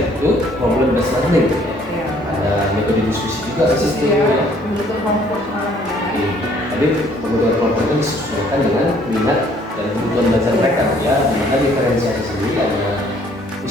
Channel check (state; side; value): normal; both; correlation 0.61